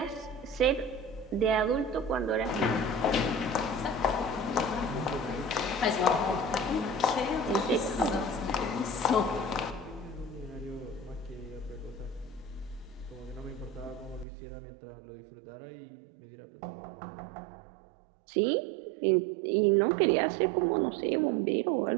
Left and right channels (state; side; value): drops out; left; at 14.2 s